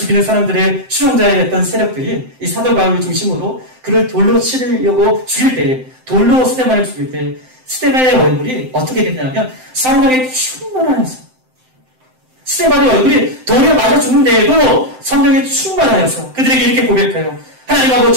사람들의 추종자였던 세력들이 이 사도 바울을 중심으로 그를 돌로 치려고 죽일 때, 돌로 스데반을 죽일 때 스데반의 얼굴이 어떻게 됐냐면 성령의 충만하여서, 스데반의 얼굴이 돌에 맞아 죽는데에도 성령의 충만하여서 그들에게 이렇게 고백해요. 하나님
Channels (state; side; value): late; left; 7.8 ms